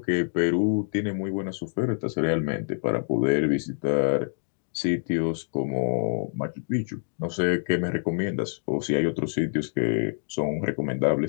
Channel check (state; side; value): silent; right; digital silence